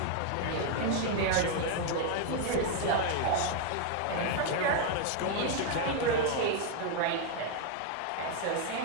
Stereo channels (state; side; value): different; both; correlation 0.00